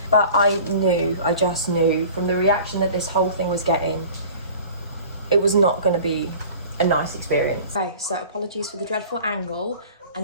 But I just knew from the reaction that this whole thing was getting, it was not going to be a nice experience. Okay, so apologies for the dreadful angle, and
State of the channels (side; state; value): both; inverted; correlation -0.43